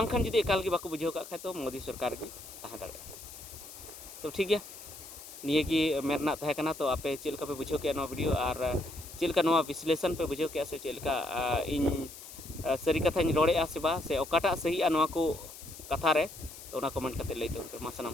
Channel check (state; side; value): noise; left; hiss, 14 dB below the sound